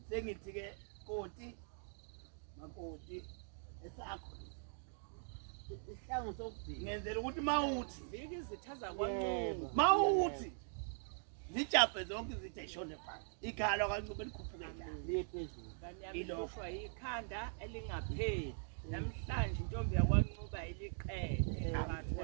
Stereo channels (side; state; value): left; silent; digital silence